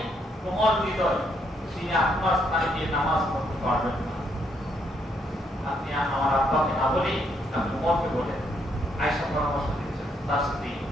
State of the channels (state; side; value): normal; both; correlation 0.74